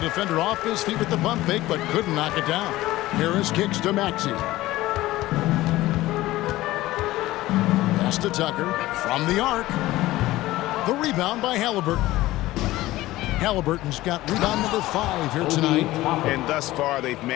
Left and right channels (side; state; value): right; quieter; 17.1 dB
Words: defender off his feet with the pump fake, but couldn't knock it down. Harris kicks to Maxey. Pass to Tucker from the arc. The rebound by Halliburton. Halliburton's got rebound number 5 here tonight. And thus far, they've